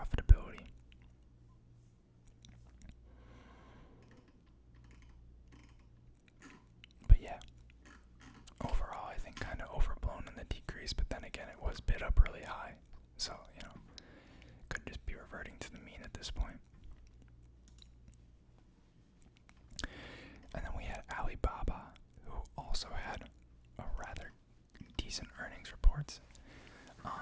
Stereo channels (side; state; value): both; identical; correlation 1.00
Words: But yeah, overall I think kind of overblown in the decrease, but then again it was bid up really high. So, could just be reverting to the mean at this point. And then we had Alibaba, who also had a rather decent earnings reports,